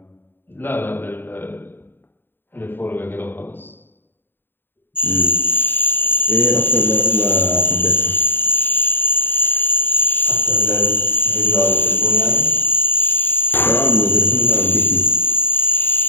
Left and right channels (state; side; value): late; right; 0.098 ms